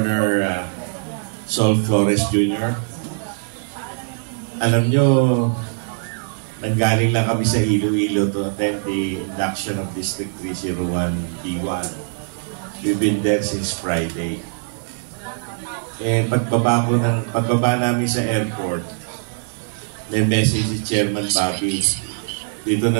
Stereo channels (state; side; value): silent; left; digital silence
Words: Sol Flores Jr. Alam nyo, nanggaling lang kami sa Iloilo to attend the induction of District 301 D1. We've been there since Friday. Pagbaba namin sa airport, may message si Chairman Bobby, dito